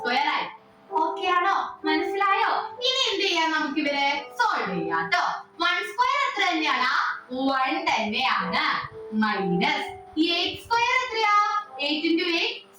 ആയി. ഓക്കെ ആണോ? മനസ്സിലായോ? ഇനി എന്ത് ചെയ്യാം? നമുക്ക് ഇവരെ സോൾവ് ചെയ്യാം ട്ടോ. 1 സ്ക്വയർ എത്ര തന്നെയാണ്? 1 തന്നെയാണ്. മൈനസ് 8 സ്ക്വയർ എത്രയാ? 8 into 8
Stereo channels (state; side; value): identical; both; correlation 1.00